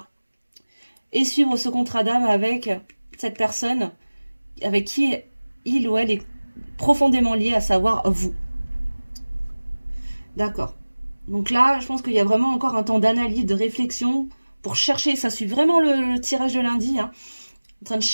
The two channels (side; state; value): both; inverted; correlation -1.00